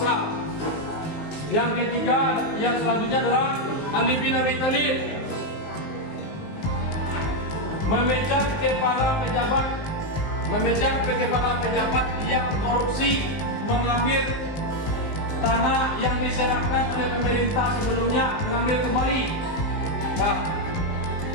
Yang ketiga, yang selanjutnya adalah Ali bin Abi Thalib memecat kepala pejabat yang korupsi, mengambil tanah yang diserahkan oleh pemerintah sebelumnya, mengambil kembali.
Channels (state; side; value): late; right; 19 ms